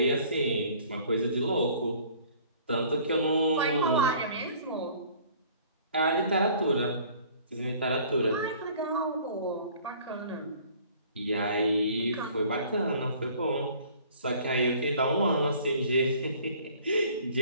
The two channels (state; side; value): inverted; both; correlation -0.53